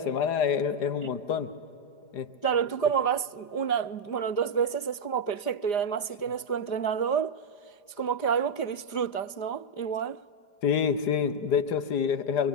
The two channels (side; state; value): right; late; 4.9 ms